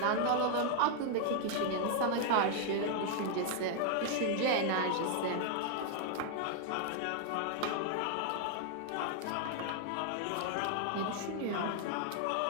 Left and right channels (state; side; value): different; both; correlation 0.00